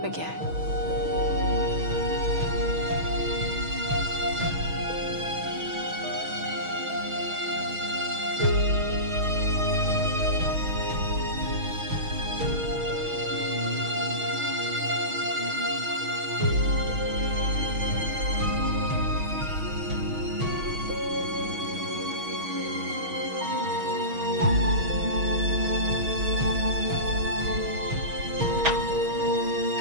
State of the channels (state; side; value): late; left; 6.3 ms